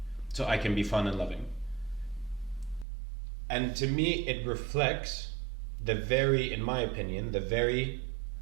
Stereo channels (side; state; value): left; drops out; at 2.9 s